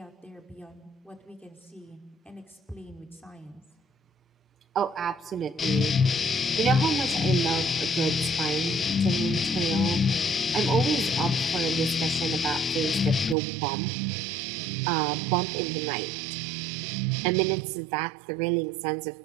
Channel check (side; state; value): left; drops out; at 13.4 s